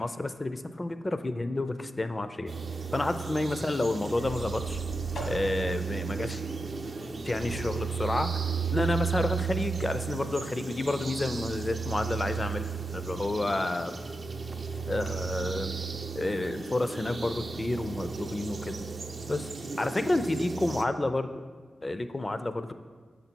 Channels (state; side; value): normal; both; correlation 0.89